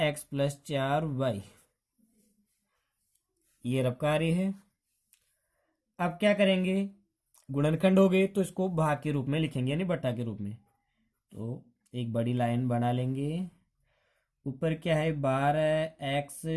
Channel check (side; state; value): both; identical; correlation 1.00